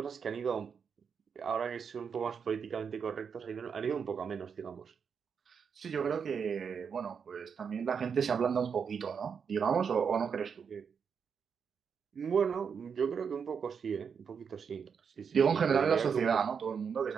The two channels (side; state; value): left; quieter; 6.5 dB